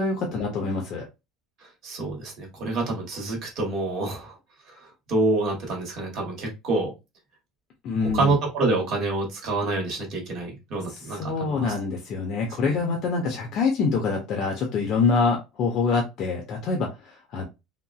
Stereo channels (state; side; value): normal; both; correlation 0.41